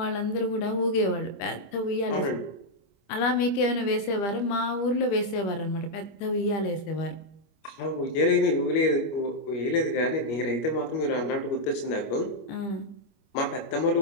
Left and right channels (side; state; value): right; late; 25 ms